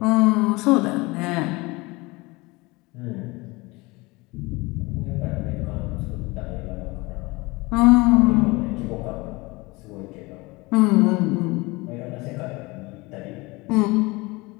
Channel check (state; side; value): quieter; right; 23.8 dB